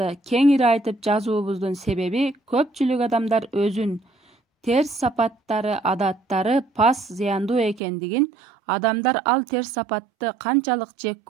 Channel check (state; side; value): drops out; left; at 7.8 s